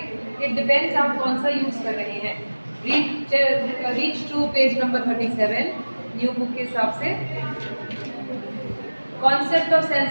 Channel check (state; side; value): inverted; both; correlation -1.00